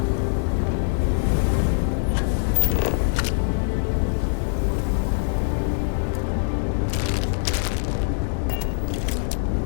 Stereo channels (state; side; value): silent; right; 63 dB below the other